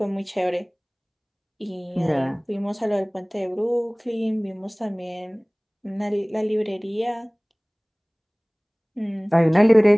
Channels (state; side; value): identical; both; correlation 1.00